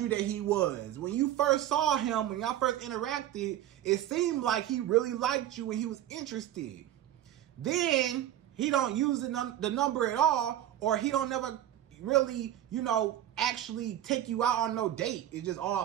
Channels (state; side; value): quieter; left; 12.2 dB